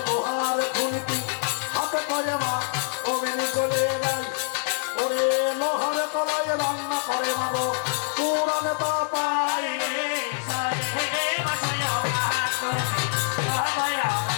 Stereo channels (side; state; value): right; silent; digital silence